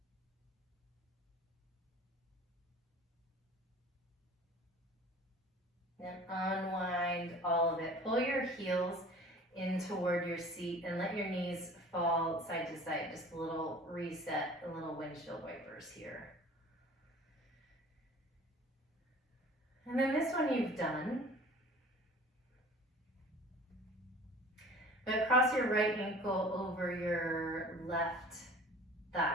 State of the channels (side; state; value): both; normal; correlation 0.45